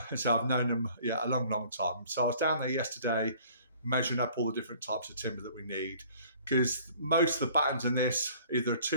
so I've known them a long time. So I was down there yesterday measuring up all the different types of timber that we need, because most of the battens in this, either a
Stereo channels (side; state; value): both; inverted; correlation -0.53